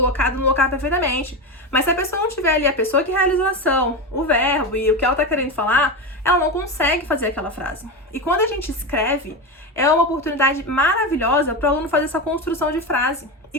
no lugar perfeitamente. Mas se a pessoa não tiver ali a pessoa que realizou a ação, o verbo e o que ela tá querendo falar, ela não consegue fazer aquela frase. E quando a gente escreve, é uma oportunidade maravilhosa para o aluno fazer essa construção de frase. E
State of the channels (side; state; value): both; normal; correlation 0.17